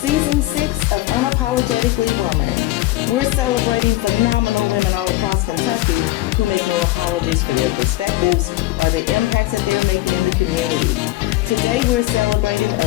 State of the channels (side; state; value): right; quieter; 17.2 dB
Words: Season 6 of Unapologetically Woman. We're celebrating phenomenal women all across Kentucky who make no apologies for their perspectives or the impacts that they're making in the community. Today we're celebrating